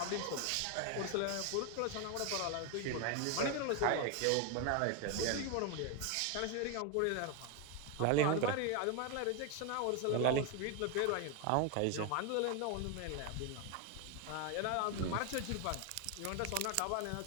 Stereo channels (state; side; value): different; both; correlation 0.01